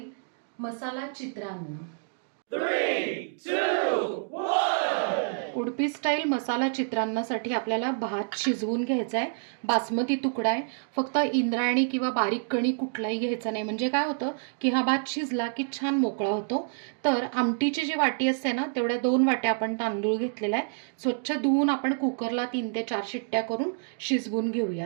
मसाला चित्रान्न. उडपी स्टाईल मसाला चित्रान्नासाठी आपल्याला भात शिजवून घ्यायचा आहे. बासमती तुकडा आहे. फक्त इंद्रायणी किंवा बारीक कणी कुठलाही घ्यायचा नाही. म्हणजे काय होतं की हा भात शिजला की छान मोकळा होतो. तर आमटीची जी वाटी असते ना तेवढ्या 2 वाट्या आपण तांदूळ घेतलेला आहे. स्वच्छ धुवून आपण कुकरला 3 ते 4 शिट्ट्या करून शिजवून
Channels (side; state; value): left; silent; digital silence